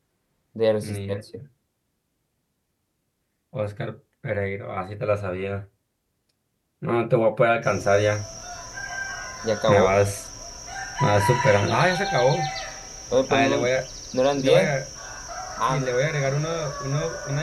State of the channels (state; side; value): identical; both; correlation 1.00